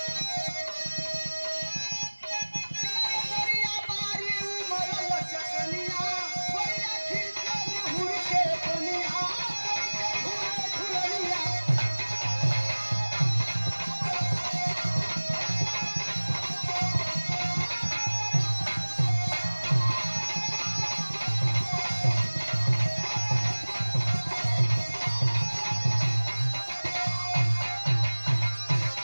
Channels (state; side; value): inverted; both; correlation -1.00